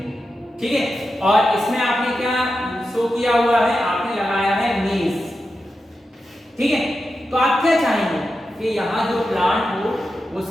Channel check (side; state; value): both; normal; correlation 0.90